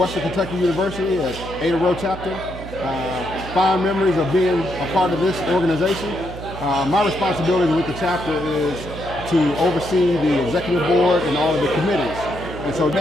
Kentucky University at Ada Rho chapter. Fond memories of being a part of this organization. My responsibility with the chapter is to oversee the executive board and all of the committees. And so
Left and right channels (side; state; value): right; noise; hum, 12 dB below the sound